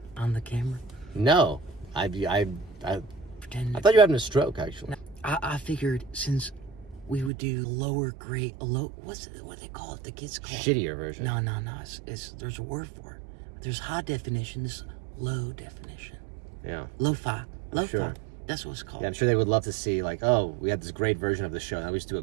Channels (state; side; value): drops out; left; at 7.3 s